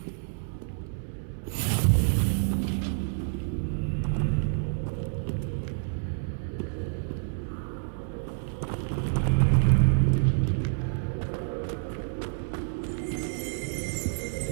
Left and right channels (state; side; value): silent; left; 59 dB below the other